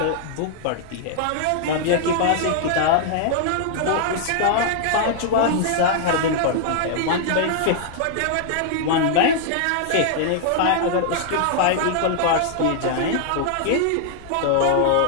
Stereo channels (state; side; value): different; both; correlation -0.01